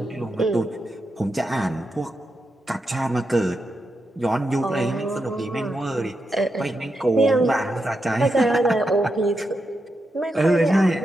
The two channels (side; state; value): both; normal; correlation 0.86